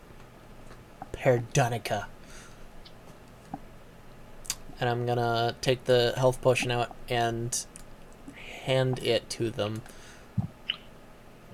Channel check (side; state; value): both; identical; correlation 1.00